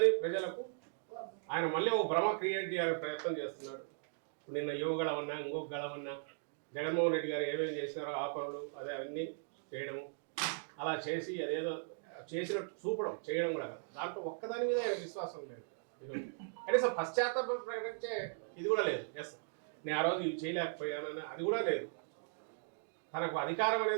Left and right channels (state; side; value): silent; left; digital silence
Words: ప్రజలకు ఆయన మళ్ళీ ఒక భ్రమ క్రియేట్ చేయాలని ప్రయత్నం చేస్తున్నాడు. నిన్న యువగళమన్నా ఇంకొక గళమన్నా జగన్మోహన్ రెడ్డి గారు ఏమేమి చేసినారో ఆ పనులు అదే అన్నీ చేయడము, అలా చేసి అదేదో చేసినట్టు చూపడం చేయడం కూడా కాదు. దాంట్లో ఒక్కదాని మీద ఆయన విశ్వాసం లేదు. కనీసం పశ్చాత్తాపం ప్రకటించే ఇది కూడా లేదు. ఎస్ నేను ఆ రోజు ఇవి చేయలేకపోయానని అది కూడా లేదు. తనకు అధికారం